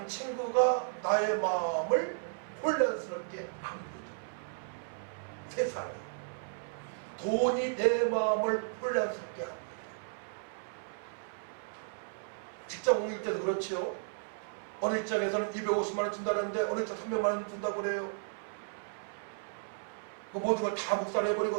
친구가 나의 마음을 혼란스럽게 합니다. 세상이 돈이 내 마음을 혼란스럽게 합니다. 직장 옮길 때도 그렇지요. 어느 직장에서는 250만 원 준다는데 어느 직장 300만 원 준다고 그래요. 그 모든 걸 다 묵살해버리고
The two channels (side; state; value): left; silent; 55 dB below the other